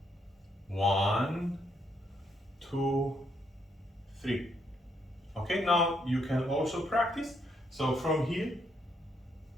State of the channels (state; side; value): normal; both; correlation 0.75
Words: 1, 2, 3. Okay, now you can also practice. So from here,